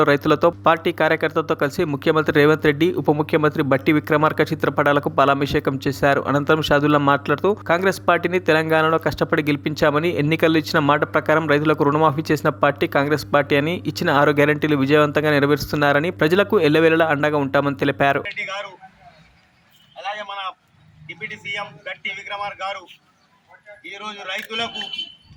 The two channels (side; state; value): both; identical; correlation 1.00